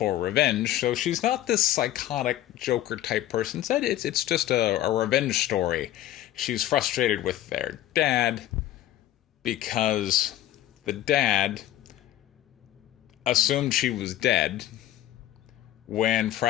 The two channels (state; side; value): quieter; right; 13.4 dB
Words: revenge. So she's not this psychotic Joker type person. Instead, it's just a revenge story. She's frustrated with their dad because the dad assumed she was dead when